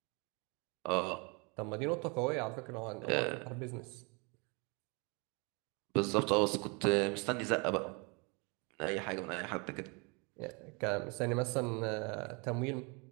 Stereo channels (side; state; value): left; quieter; 31.1 dB